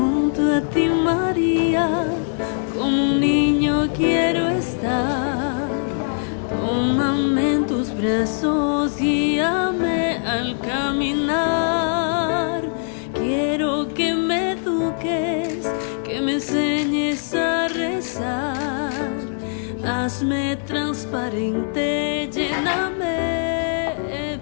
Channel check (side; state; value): right; silent; digital silence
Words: a ti, María, como un niño quiero estar. Tómame en tus brazos, guíame al caminar. Quiero que me eduques, que me enseñes a rezar. Hazme transparente, lléname